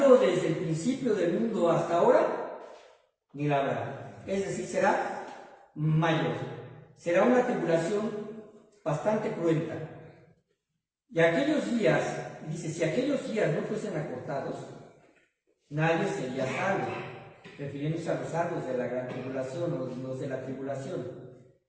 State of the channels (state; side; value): identical; both; correlation 1.00